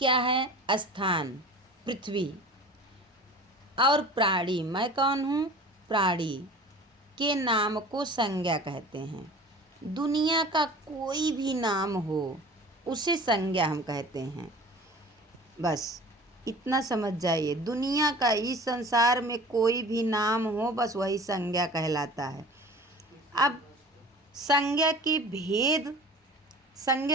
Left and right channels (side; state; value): both; normal; correlation 0.41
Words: है? स्थान, पृथ्वी। और प्राणी, मैं कौन हूँ? प्राणी के नाम को संज्ञा कहते हैं। दुनिया का कोई भी नाम हो उसे संज्ञा हम कहते हैं। बस इतना समझ जाइए, दुनिया का, इस संसार में कोई भी नाम हो बस वही संज्ञा कहलाता है। अब संज्ञा के भेद,